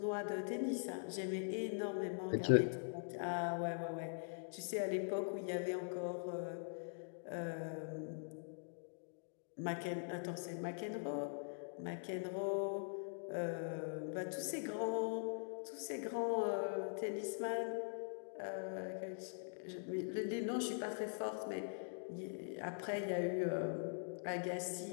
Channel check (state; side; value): silent; right; digital silence